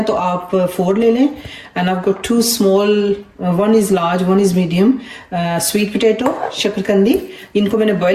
तो आप 4 ले लें। एंड आपको 2 small, 1 is large 1 is medium sweet potato, शकरकंदी। इनको मैंने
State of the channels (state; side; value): identical; both; correlation 1.00